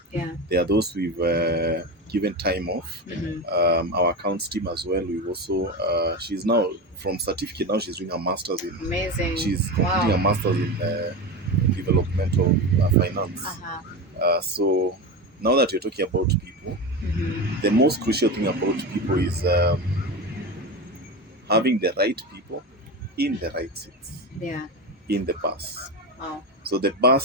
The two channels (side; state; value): both; normal; correlation 0.21